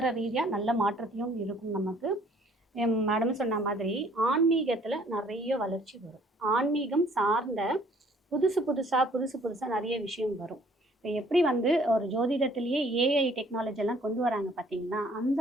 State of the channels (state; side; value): normal; both; correlation 0.59